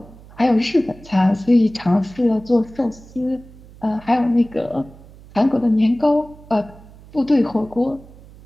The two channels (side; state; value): right; noise; hum, 21 dB below the sound